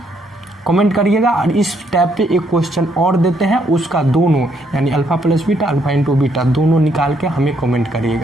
और इस टैब पे एक क्वेश्चन और देते हैं, उसका दोनों यानी alpha plus beta, alpha into beta दोनों निकाल के हमें कमेंट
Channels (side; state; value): both; normal; correlation 0.72